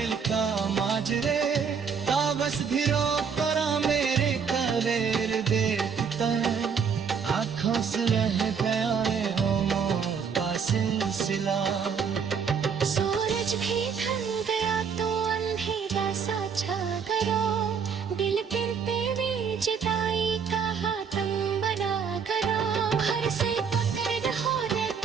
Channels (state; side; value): quieter; left; 6.5 dB